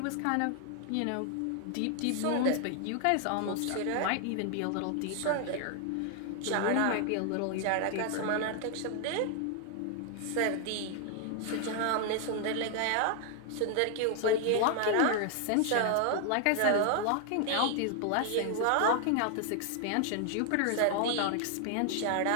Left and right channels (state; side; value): different; both; correlation 0.00